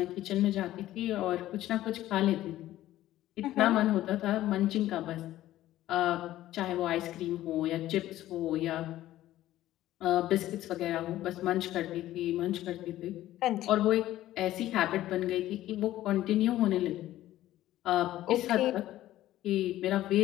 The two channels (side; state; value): right; quieter; 14.3 dB